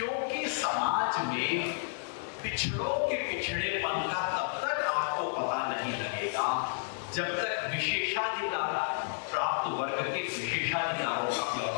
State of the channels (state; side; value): silent; right; digital silence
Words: समाज में पिछड़ों के पिछड़ेपन का तब तक आपको पता नहीं लगेगा जब तक विशेषाधिकार प्राप्त वर्ग के विशेषाधिकारों का